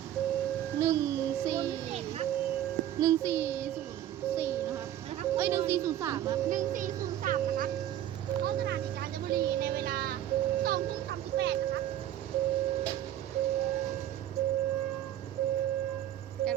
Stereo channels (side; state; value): left; quieter; 11.9 dB